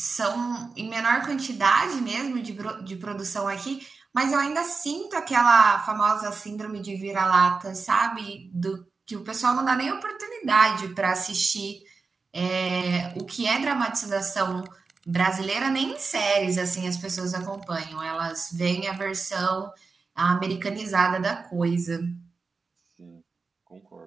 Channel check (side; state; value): left; quieter; 4.4 dB